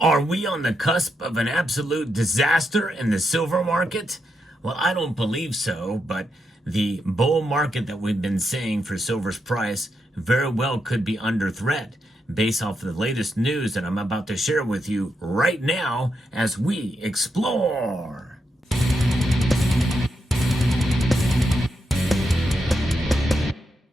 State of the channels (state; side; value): normal; both; correlation 0.83